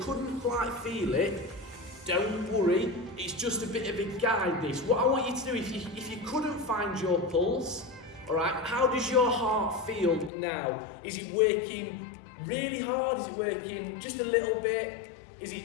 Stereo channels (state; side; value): drops out; right; at 10.3 s